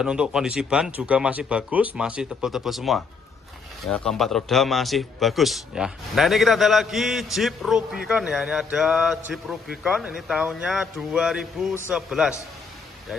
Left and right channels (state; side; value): quieter; right; 5.0 dB